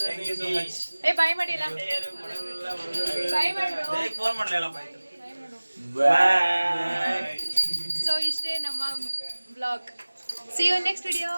you so much ಏ ಬಾಯ್ ಮಾಡಿ ಎಲ್ಲ. ಬಾಯ್ ಮಾಡು. ಫೋನ್ ಮಾಡ್ಲಿಲ್ಲಪ್ಪ ಆಯ್ತು ಬಾಯ್. ಸೊ ಇಷ್ಟೇ ನಮ್ಮ vlog. See you next video.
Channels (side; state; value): both; inverted; correlation -1.00